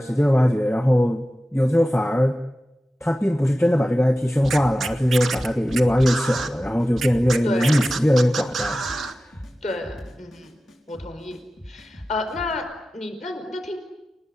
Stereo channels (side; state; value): both; normal; correlation 0.95